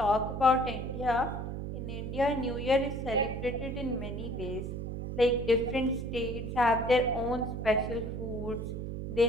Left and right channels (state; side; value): noise; right; hum, 5 dB below the sound